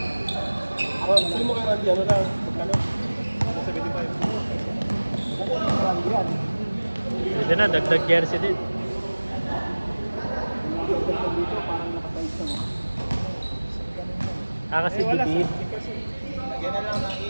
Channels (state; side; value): inverted; both; correlation -1.00